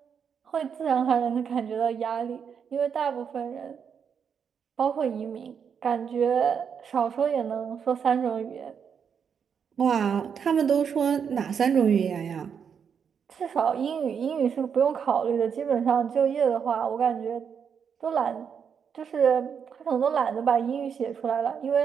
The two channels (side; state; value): left; quieter; 7.1 dB